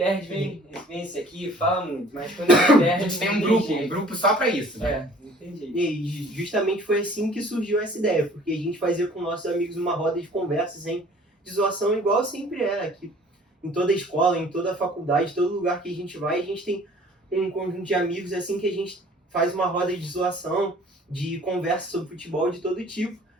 vem esse aqui, fala muito. Mas quando a gente perde, A gente tem um grupo só pra isso, né? não tem jeito. E justamente foi assim que surgiu essa ideia, porque a gente fazia com nossos amigos uma roda de conversas, de zoação, igual sempre aqui. Em toda escola, em toda faculdade, todo lugar que a gente vai, a gente tem um conjunto de amigos assim que a gente faz uma roda de zoação, de conversa sobre futebol de todo tipo.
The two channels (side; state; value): both; normal; correlation 0.52